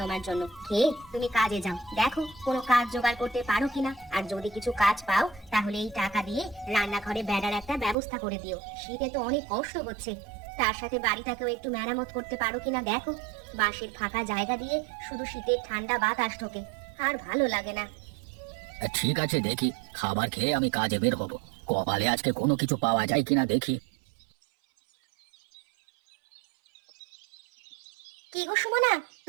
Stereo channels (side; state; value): left; drops out; at 8.0 s